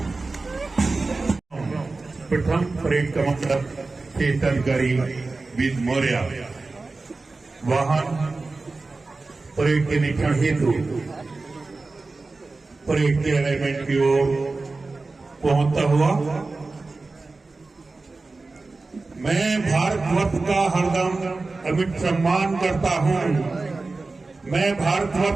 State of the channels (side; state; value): left; quieter; 3.6 dB